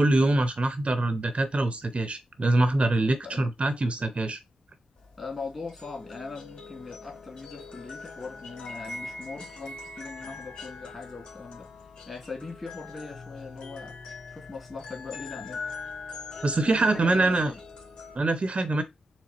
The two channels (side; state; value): both; normal; correlation 0.89